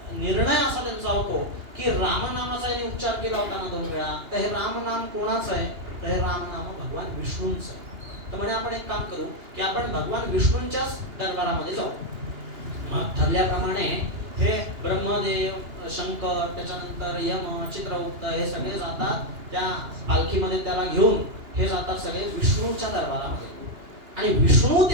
निर्णय असा त्यांचा होतो की रामनामाचा यांनी उच्चार केला होता ना 2 वेळा, तर हे रामनाम कोणाचं आहे, तर हे रामनाम भगवान विष्णूंचं आहे. तर म्हणे आपण एक काम करू की आपण भगवान विष्णूंच्याच दरबारामध्ये जाऊ. मग ठरल्याप्रमाणे हे ब्रह्मदेव, शंकर, त्याच्यानंतर यम, चित्रगुप्त हे सगळे जातात त्या पालखीमध्ये त्याला घेऊन. हे जातात सगळे विष्णूच्या दरबारामध्ये आणि विष्णू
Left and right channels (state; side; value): late; left; 2.9 ms